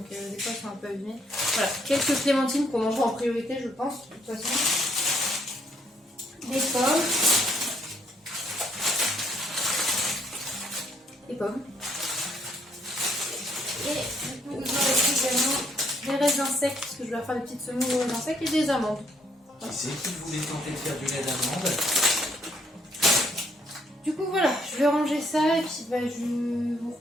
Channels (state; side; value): normal; both; correlation 0.68